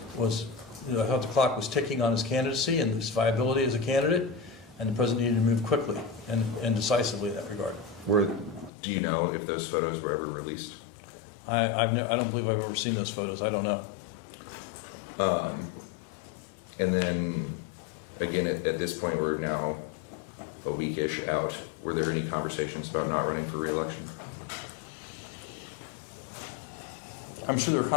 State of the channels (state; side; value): drops out; right; at 8.7 s